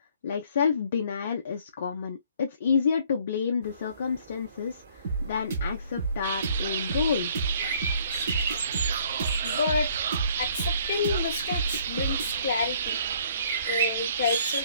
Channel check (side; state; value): both; inverted; correlation -0.60